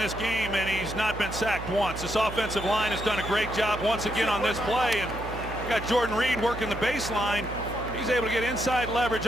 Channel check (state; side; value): noise; right; hum, 10 dB below the sound